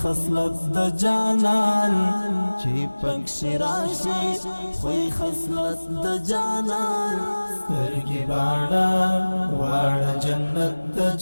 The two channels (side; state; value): both; inverted; correlation -1.00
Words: خصلت د جانان چې پکښې راشي خوی خصلت د جانان سترګې باڼه واړه جنت د